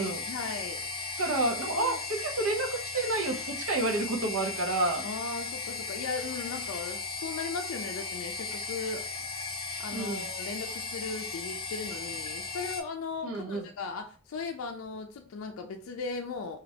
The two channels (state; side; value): normal; both; correlation -0.06